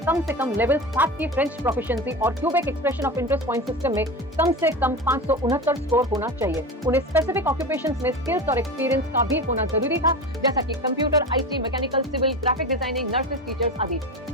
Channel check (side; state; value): both; normal; correlation 0.26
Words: से कम लेवल 7 की फ्रेंच प्रोफिशिएंसी और Quebec expression of interest point system में कम से कम 569 स्कोर होना चाहिए। उन्हें स्पेसिफिक ऑक्यूपेशंस में स्किल्स और एक्सपीरियंस का भी होना जरूरी था, जैसा कि computer, IT, mechanical, civil, graphic designing, nurses, teachers आदि।